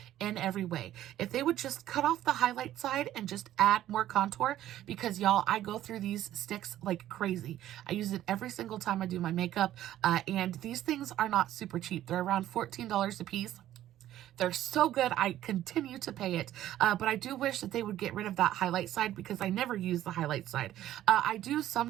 in every way. If they would just cut off the highlight side and just add more contour, because y'all, I go through these sticks like crazy. I use it every single time I do my makeup, and these things are not super cheap. They're around $14 a piece. They're so good. I continue to pay it. But I do wish that they would get rid of that highlight side, because I never use the highlight side. I do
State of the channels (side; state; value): left; quieter; 12.9 dB